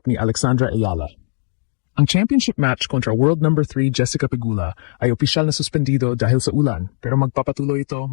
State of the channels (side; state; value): right; silent; digital silence